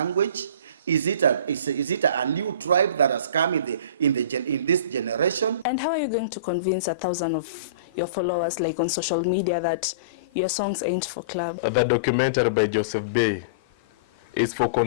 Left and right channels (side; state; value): both; inverted; correlation -0.35